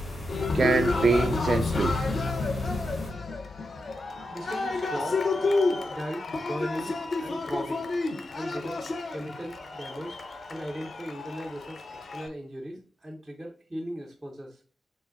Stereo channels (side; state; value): both; normal; correlation 0.86